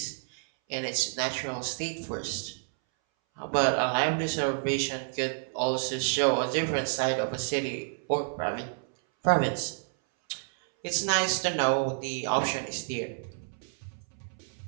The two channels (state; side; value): silent; left; 58 dB below the other